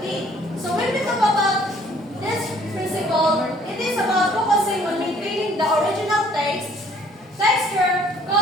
So, when we talk about this principle, it is about focusing on maintaining the original taste, texture,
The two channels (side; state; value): both; normal; correlation 0.59